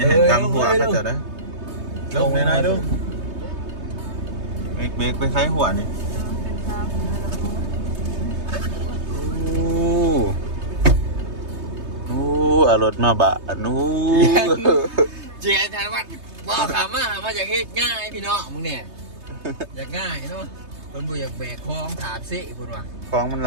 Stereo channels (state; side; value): late; left; 3.2 ms